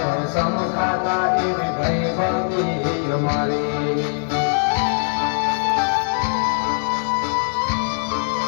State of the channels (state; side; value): silent; right; digital silence